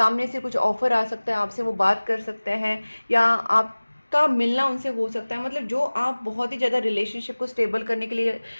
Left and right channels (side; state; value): both; inverted; correlation -1.00